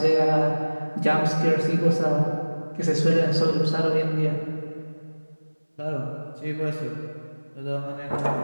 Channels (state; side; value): inverted; both; correlation -1.00